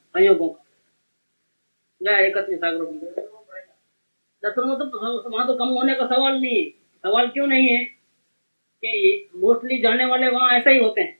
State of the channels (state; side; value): inverted; both; correlation -1.00